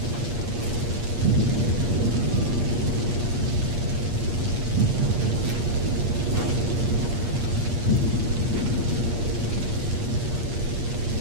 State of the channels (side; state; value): left; late; 8.5 ms